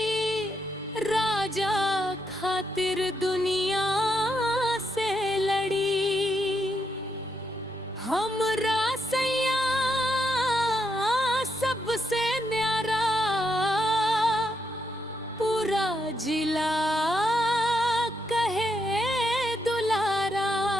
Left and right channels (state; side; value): normal; both; correlation 0.80